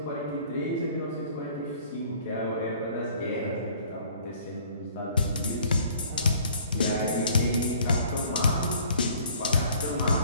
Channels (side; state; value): both; inverted; correlation -0.54